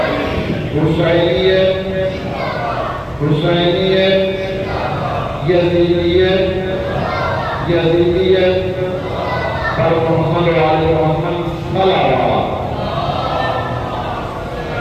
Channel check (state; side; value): identical; both; correlation 1.00